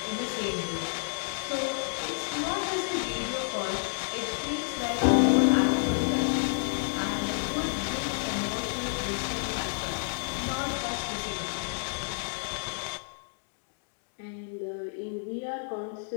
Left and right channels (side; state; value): right; silent; digital silence